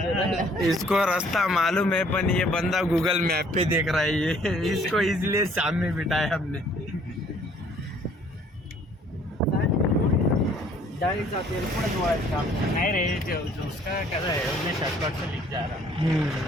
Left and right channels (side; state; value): both; normal; correlation 0.59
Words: इसको रास्ता मालूम है पण ये बंदा गूगल मैप पे देख रहा है. ये इसको इसलिए सामने बिठाया हमने. डाळीचा तेल पुढे जोडायचं काम नहीं रे उसका कैसा है उसने शॉर्टकट से लिख जा रहा.